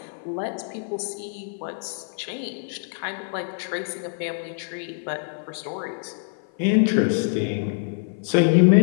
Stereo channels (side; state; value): right; silent; 56 dB below the other